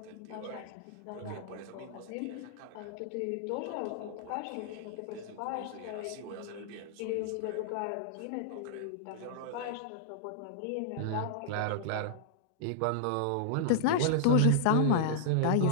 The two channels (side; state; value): both; different; correlation -0.01